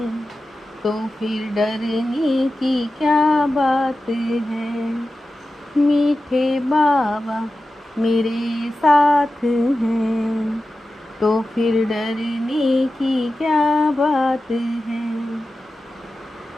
तो फिर डरने की क्या बात है। मीठे बाबा मेरे साथ हैं तो फिर डरने की क्या बात है।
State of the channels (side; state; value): both; normal; correlation 0.94